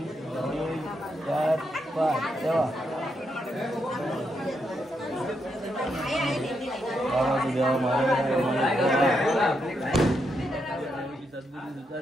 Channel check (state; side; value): normal; both; correlation 0.81